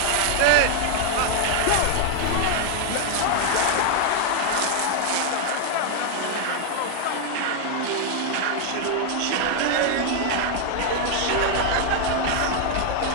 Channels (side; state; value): both; different; correlation 0.00